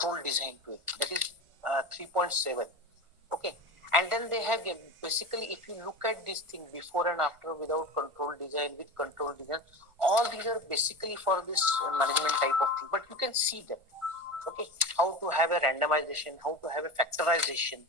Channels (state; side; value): late; left; 1.5 ms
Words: design to it. That is 3.7. Okay, and then they have basically, if you look at this thing before and after, without control design, with control design, all these are basically for this management type of thing, but you can see them. Okay, how to have a randomization, how to have a factorization